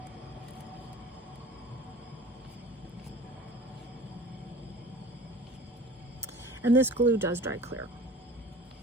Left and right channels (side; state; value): both; normal; correlation 0.42